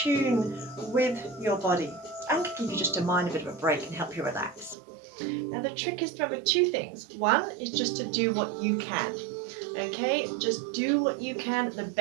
with your body and can give you just a mind a bit of a break and help you relax. Now the trick is to remember two things. One is just to do what you can. Okay, just do what you can, the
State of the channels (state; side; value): drops out; left; at 4.8 s